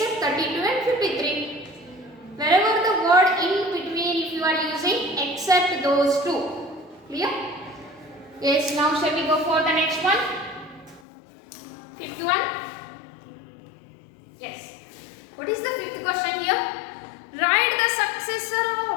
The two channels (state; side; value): drops out; right; at 11.0 s